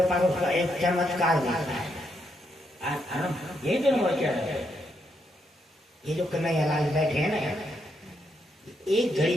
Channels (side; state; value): both; normal; correlation 0.79